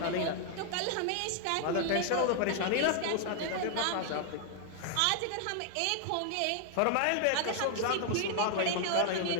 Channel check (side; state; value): both; different; correlation 0.00